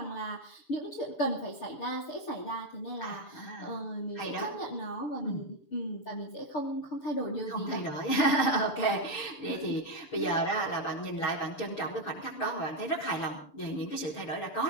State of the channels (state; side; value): late; right; 6.9 ms